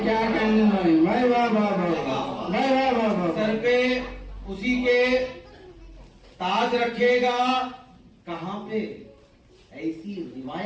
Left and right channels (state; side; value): identical; both; correlation 1.00